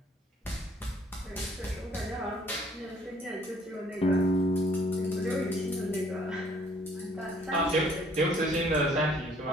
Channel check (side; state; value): both; normal; correlation 0.60